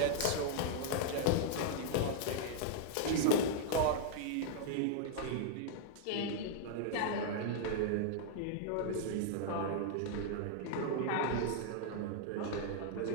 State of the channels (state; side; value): different; both; correlation -0.01